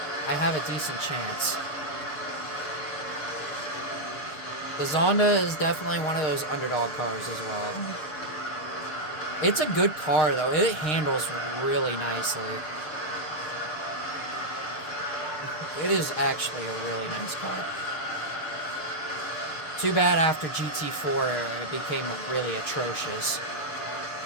I have a decent chance. The Zonda is definitely one of those underdog cars as well. It's a good car, though. It handles really nicely. It is actually a really nice car. Too bad after GT4 it became really atrocious.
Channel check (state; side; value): late; right; 6.5 ms